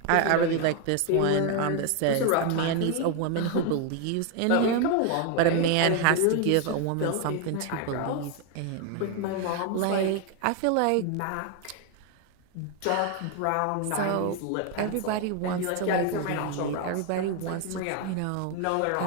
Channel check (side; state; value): both; different; correlation 0.01